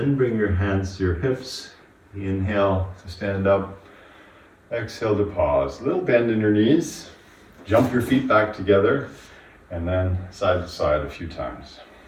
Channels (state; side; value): identical; both; correlation 1.00